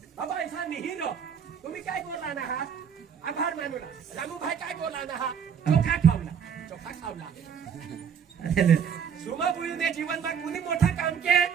तुम्ही काय बोलला ना हा आभार मानूला रामू भाई काय बोलला ना हा चोखा खावला सुमा बुईने जीवनमा कुणी मोठं काम के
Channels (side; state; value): left; quieter; 7.5 dB